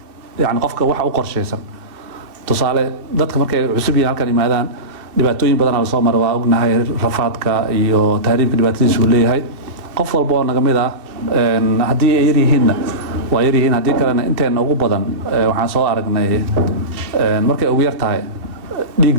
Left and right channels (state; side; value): late; left; 2.6 ms